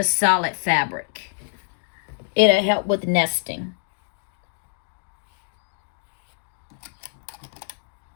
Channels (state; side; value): silent; right; digital silence